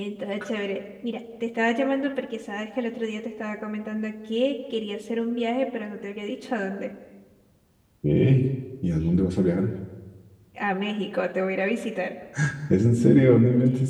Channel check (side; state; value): both; identical; correlation 1.00